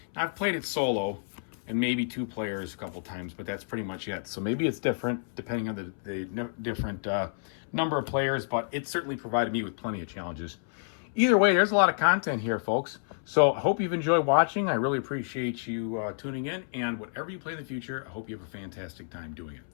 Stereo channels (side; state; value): right; silent; 58 dB below the other